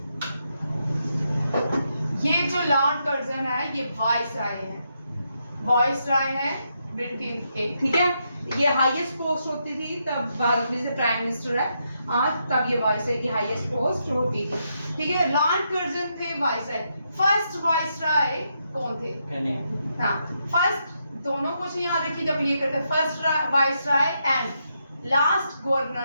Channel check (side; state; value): both; inverted; correlation -0.81